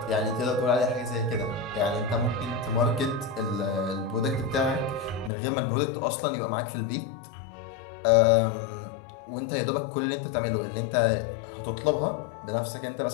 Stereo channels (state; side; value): drops out; right; at 5.3 s